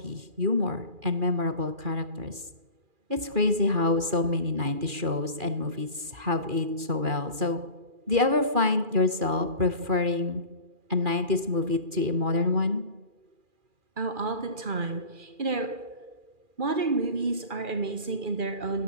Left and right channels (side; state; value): left; late; 2.4 ms